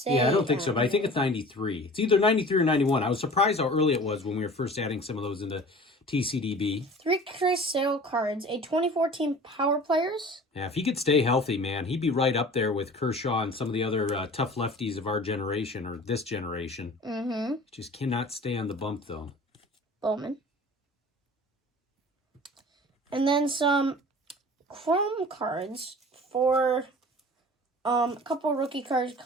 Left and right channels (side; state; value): both; normal; correlation 0.42